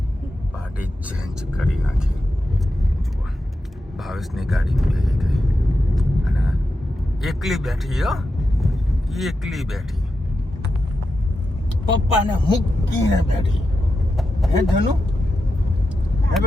પાર્ટી ચેન્જ કરી નાખી. જુઓ ભાવેશની ગાડી બેસી ગઈ અને એકલી બેઠી પપ્પાને મૂકીને બેઠી. હે ધનુ? હે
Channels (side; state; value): both; normal; correlation 0.89